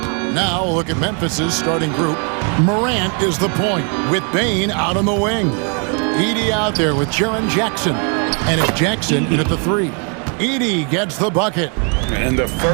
Now look at Memphis's starting group. Morant is the point with Bain out on the wing. Edey out there with Jaren Jackson. And it's Jackson in at the 3. Edey gets the bucket. And the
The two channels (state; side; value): quieter; left; 38.5 dB